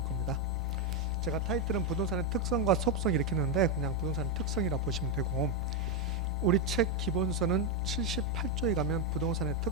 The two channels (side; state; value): left; noise; rumble, 13 dB below the sound